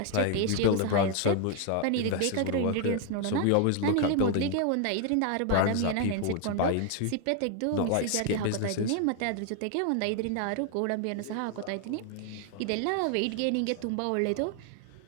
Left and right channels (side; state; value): both; different; correlation 0.00